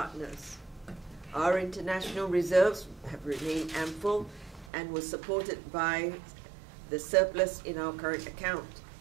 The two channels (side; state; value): left; drops out; at 4.7 s